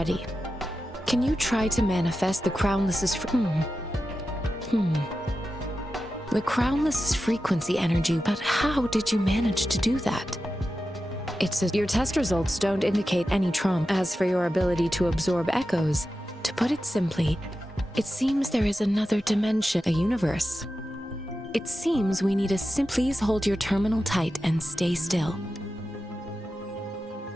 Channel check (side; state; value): both; normal; correlation 0.92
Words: Can you try to manifest the Crownless's The Crownless's frequency energy, but how did you manage to do that? Your test results don't indicate any trauma. As for your ability to absorb echoes, To put it simply, it seems there is another dimension, a universe. It seems we need a please hold your terminal tight and stay still.